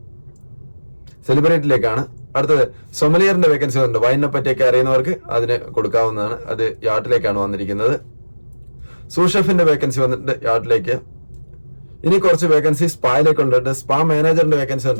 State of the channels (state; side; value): inverted; both; correlation -1.00